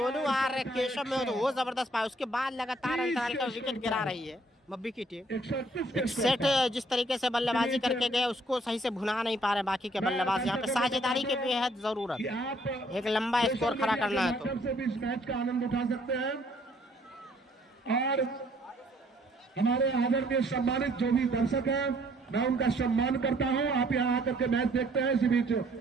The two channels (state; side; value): normal; both; correlation 0.63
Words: आर केशव में हो तो वो जबरदस्त पाया, उसके बाद लगातार अंतराल का विकेट गिरा रही है मब्बी की टीम। 131 एक सेट जिस तरीके से बल्लेबाजी करके गए उसको सही से भुना नहीं पा रहे बाकी के बल्लेबाज, यहाँ पे साझेदारी की बेहद जरूरत है, एक लंबा स्कोर खड़ा करना है तो। से भी इस मैच का आनंद उठा सकते हैं और हमारे आदरणीय सम्मानित जो भी दर्शक हैं मैं उनका सम्मान करता हूं। आप यहाँ आकर के मैच देखते हैं इसी बीच,